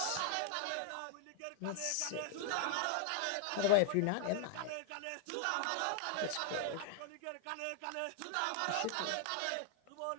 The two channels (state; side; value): different; both; correlation 0.00